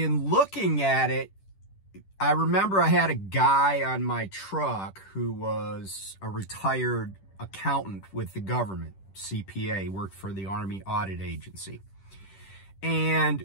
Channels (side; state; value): right; late; 10 ms